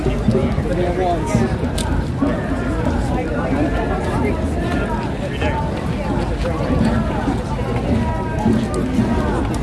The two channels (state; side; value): identical; both; correlation 1.00